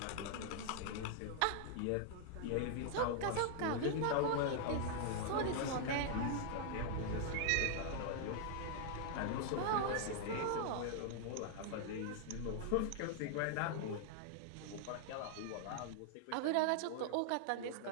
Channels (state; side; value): different; both; correlation 0.00